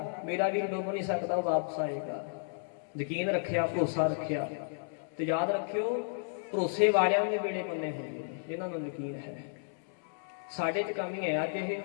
ਮੇਰਾ ਵੀ ਡੁੱਬ ਨਹੀਂ ਸਕਦਾ, ਉਹ ਵਾਪਸ ਆਏਗਾ। ਯਕੀਨ ਰੱਖਿਆ, ਭਰੋਸਾ ਰੱਖਿਆ। ਤੇ ਯਾਦ ਰੱਖਿਓ, ਭਰੋਸੇ ਵਾਲਿਆਂ ਦੇ ਵੇਲੇ ਪੰਨੇ ਹੁੰਦੇ ਨੇ ਜਿਨ੍ਹਾਂ ਨੂੰ ਯਕੀਨ ਹੈ। ਸਾਡੇ 'ਚ ਕਮੀ ਹੈ ਅੱਜ ਇਹ।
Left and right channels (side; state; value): right; silent; 56 dB below the other